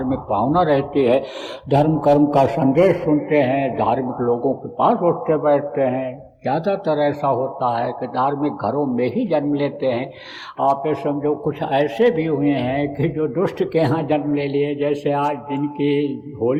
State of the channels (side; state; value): both; identical; correlation 1.00